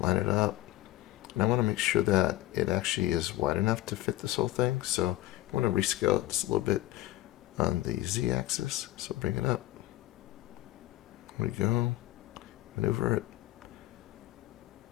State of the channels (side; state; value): right; quieter; 16.3 dB